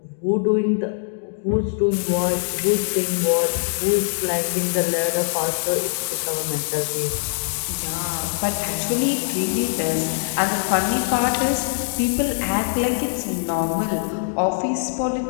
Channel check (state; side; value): silent; right; digital silence